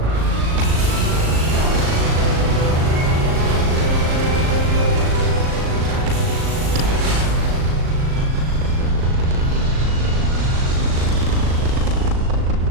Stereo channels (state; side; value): late; left; 38 ms